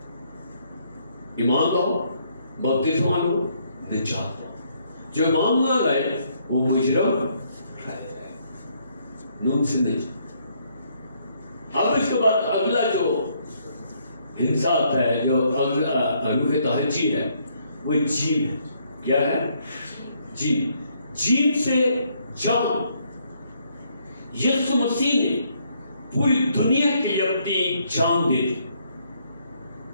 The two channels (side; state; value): both; inverted; correlation -0.70